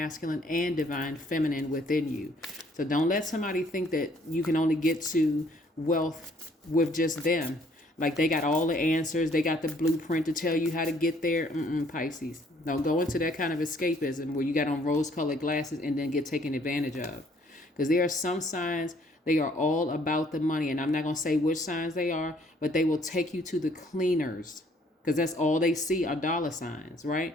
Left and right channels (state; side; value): normal; both; correlation 0.62